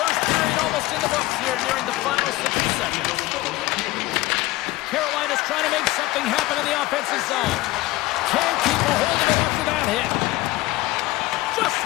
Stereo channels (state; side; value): quieter; right; 18.7 dB